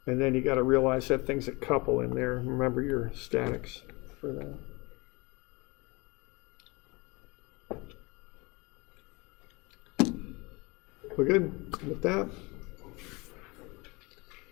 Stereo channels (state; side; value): quieter; right; 25.7 dB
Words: And then you got to realize that thing's a couple in there. Remember your statics for that. We're good with that?